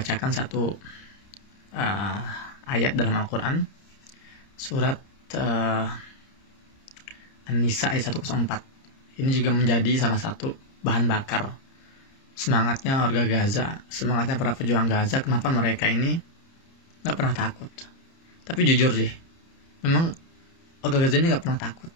satu ayat dalam Al-Quran, surat An-Nisa ayat 104. Ini juga menjadi salah satu bahan bakar semangatnya warga Gaza, semangatnya para pejuang Gaza. Kenapa mereka ini nggak pernah takut? Tapi jujur sih, memang warga Gaza ini nggak pernah takut.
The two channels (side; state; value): right; late; 30 ms